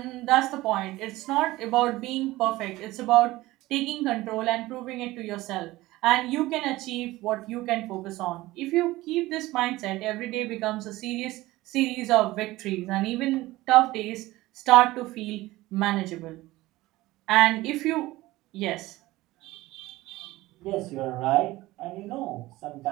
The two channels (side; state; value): left; quieter; 18.3 dB